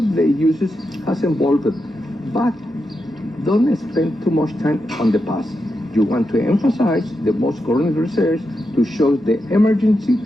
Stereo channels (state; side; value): normal; both; correlation 0.87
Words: uses has evolved, but don't spend too much time on the past. You want to emphasize the most current research to show the emergency